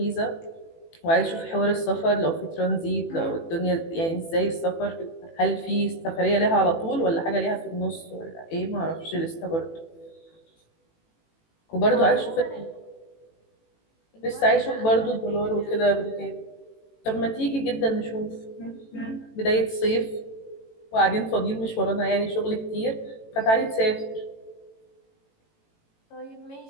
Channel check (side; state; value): right; late; 18 ms